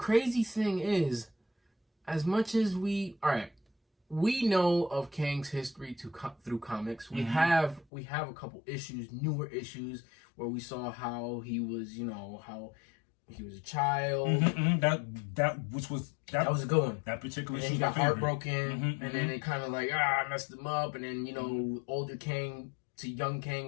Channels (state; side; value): drops out; right; at 7.9 s